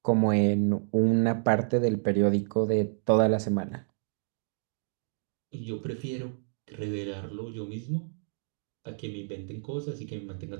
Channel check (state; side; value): silent; left; digital silence